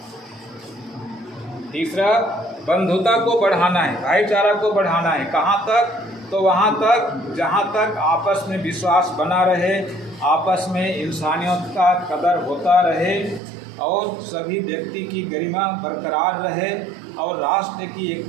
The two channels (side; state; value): left; drops out; at 13.4 s